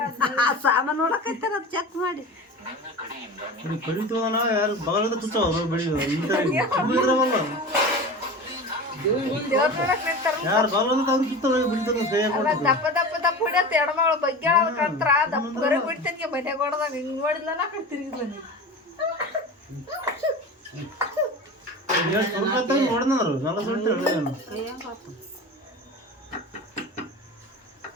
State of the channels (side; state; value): both; normal; correlation 0.31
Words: ಸಾಮಾನು ನೋಡಕೈತಾರ ಚೆಕ್ ಮಾಡಿ ಕಡಿತವನ ಯಾರು ಬಗಲದ ತುಚ್ಚವ ಯಾರು ಬಗಲದ ಅವ್ರು ತುತ್ತವ ಬಿಡ್ತಾರ ದಪ್ಪ ದಪ್ಪ ದಪ್ಪ ಹೊಡಿಯತ್ತ ಎಡಮಗಳು ಬಗ್ಗೆ ಕಂತ್ರ ದಪ್ಪ ಬರ ಬಿಡ್ತೇನೆ ಮನೆ ಕೊಡದಾಗ ಹಿಂಗ್ ನೋಡಿಲ್ಲ ನಾ ಕಡೆ ತಿರುಗಿಲ್ಲ ನೋಡಿದ್ರು ನಲ್ಲ ಸುಳ್ಳು